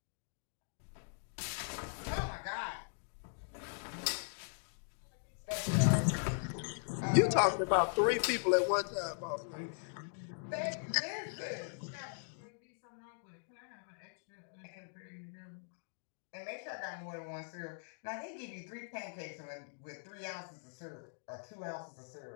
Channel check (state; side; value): silent; right; digital silence